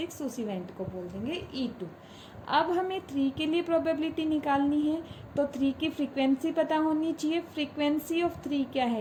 उस इवेंट को बोल देंगे E2। अब हमें 3 के लिए प्रोबेबिलिटी निकालनी है, तो 3 की फ्रीक्वेंसी पता होनी चाहिए। फ्रीक्वेंसी ऑफ 3 क्या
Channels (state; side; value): identical; both; correlation 1.00